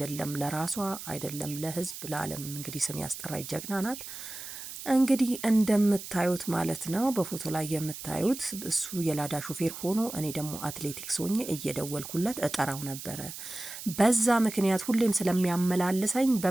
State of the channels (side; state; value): right; noise; hiss, 10 dB below the sound